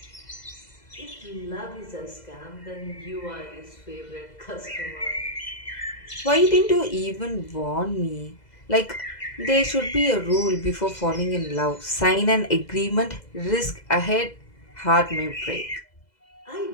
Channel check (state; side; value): late; right; 2.0 ms